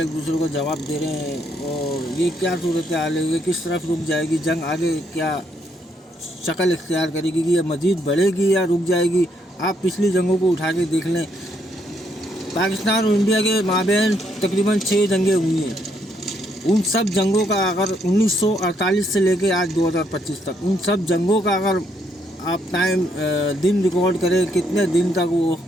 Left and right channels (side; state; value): both; normal; correlation 0.73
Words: दूसरे को जवाब दे रहे हैं। और ये क्या सूरत हाल है, ये किस तरफ रुक जाएगी जंग, आगे क्या शक्ल इख्तियार करेगी, कि ये मज़ीद बढ़ेगी या रुक जाएगी। आप पिछली जंगों को उठा के देख लें, पाकिस्तान और इंडिया के माबैन तकरीबन 6 जंगें हुई हैं। उन सब जंगों का अगर 1948 से लेके आज 2025 तक, उन सब जंगों का अगर आप दिन रिकॉर्ड करें कितने दिन तक वो